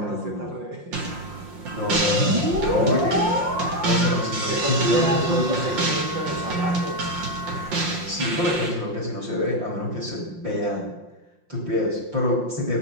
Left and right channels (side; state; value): left; late; 5.7 ms